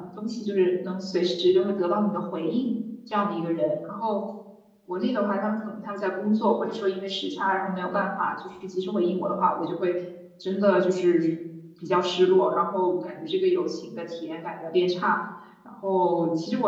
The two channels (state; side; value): identical; both; correlation 1.00